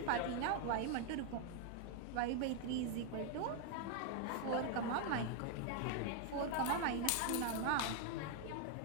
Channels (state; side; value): different; both; correlation 0.00